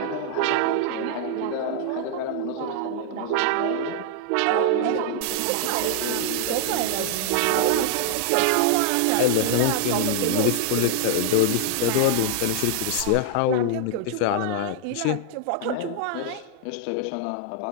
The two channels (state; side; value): different; both; correlation 0.00